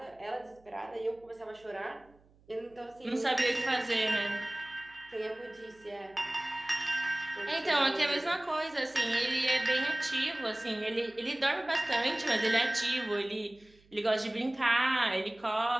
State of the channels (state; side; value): noise; right; hum, 30 dB below the sound